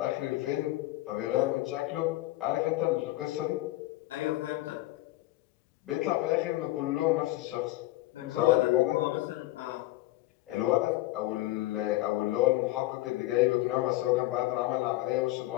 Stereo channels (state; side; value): quieter; right; 17.8 dB